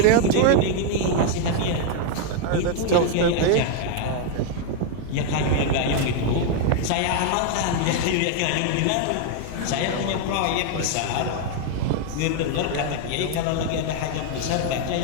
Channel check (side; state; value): both; different; correlation 0.00